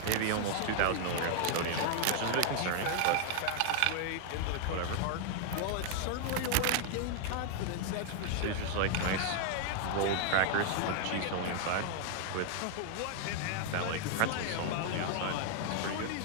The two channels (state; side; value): different; both; correlation 0.00